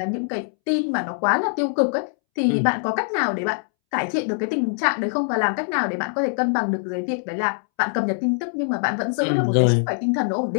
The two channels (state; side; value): silent; right; 64 dB below the other